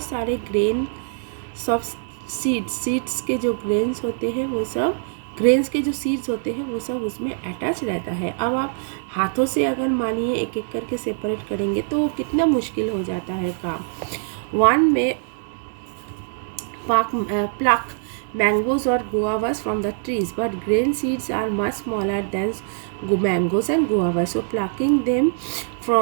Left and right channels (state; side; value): silent; left; digital silence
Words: सारे ग्रेन, सब सीड्स के जो ग्रेन्स होते हैं वो सब, ग्रेन्स के जो सीड्स होते हैं वो सब उसमें अटैच रहता है। अब आप हाथों से अगर मानिए एक एक करके सेपरेट करेंगे तो कितना मुश्किल हो जाता है काम। वन में pluck mangoes or guavas from the trees, but grain seeds are much smaller than mangoes and guavas, so plucking them